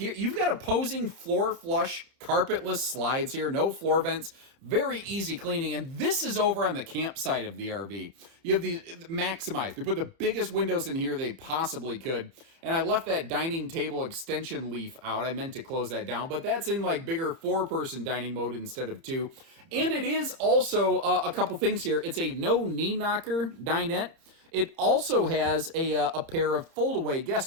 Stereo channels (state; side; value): late; left; 30 ms